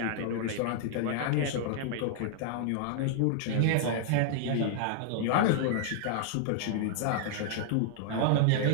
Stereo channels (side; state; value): both; different; correlation -0.01